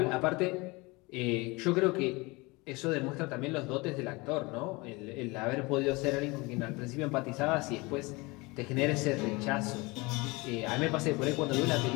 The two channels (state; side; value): quieter; right; 24.8 dB